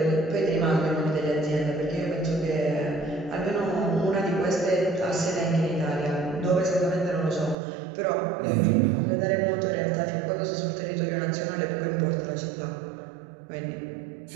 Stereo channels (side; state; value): left; drops out; at 7.6 s